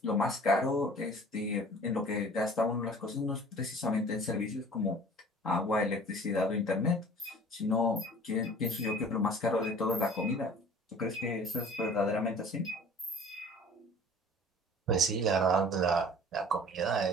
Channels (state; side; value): normal; both; correlation 0.47